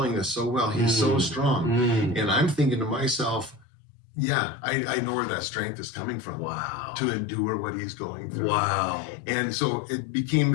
this so well. He's so strong. And I'm thinking to myself, yeah, I know where that strength is coming from. Wow. To endure what he's going through. Wow. And so it became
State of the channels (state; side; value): drops out; right; at 3.7 s